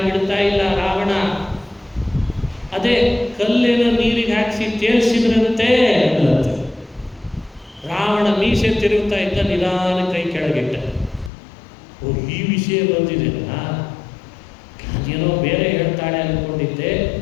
ಬಿಡ್ತಾ ಇಲ್ಲ ರಾವಣ. ಅದೇ ಕಲ್ಲೇನೋ ನೀರಿಗೆ ಹಾಕಿಸಿ ತೇಲ್ಸಿದ್ರಂತೆ. ರಾವಣ ಮೀಸೆ ತಿರುಗ್ತಾ ಇದ್ದ, ನಿಧಾನ ಕೈ ಕೆಳಗಿಟ್ಟ. ಓ, ಈ ವಿಷಯ ಬಂದಿದೆನಾ, ಅದೇನೋ ಬೇರೆ ಹೇಳ್ತಾಳೆ ಅಂದ್ಕೊಂಡಿದ್ದೆ.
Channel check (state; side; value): drops out; right; at 11.3 s